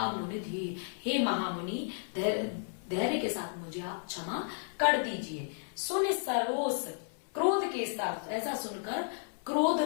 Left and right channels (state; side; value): silent; right; 56 dB below the other